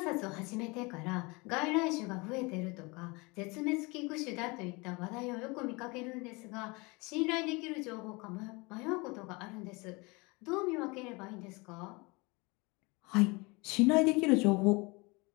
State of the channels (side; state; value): right; quieter; 26.5 dB